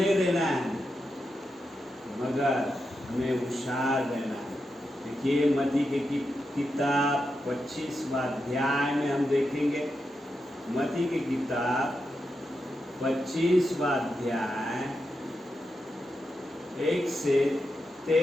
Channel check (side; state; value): both; normal; correlation 0.87